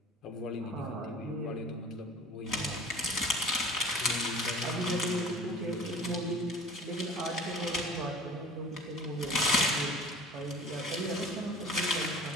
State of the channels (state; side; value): normal; both; correlation 0.43